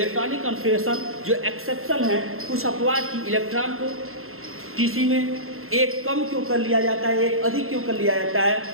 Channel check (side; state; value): left; late; 0.62 ms